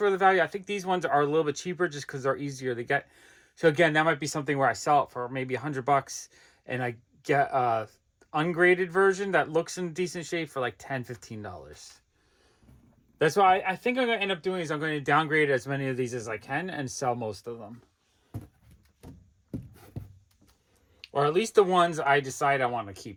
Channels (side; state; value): both; identical; correlation 1.00